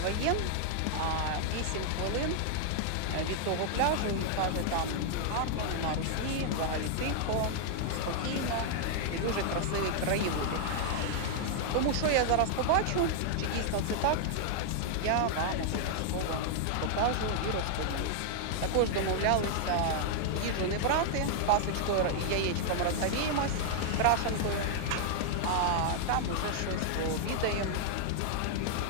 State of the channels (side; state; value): both; different; correlation -0.01